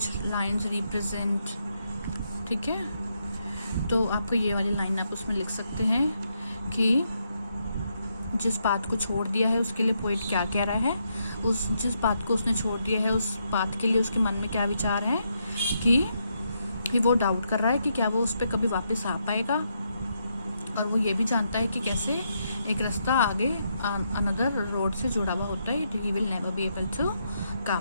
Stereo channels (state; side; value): inverted; both; correlation -0.79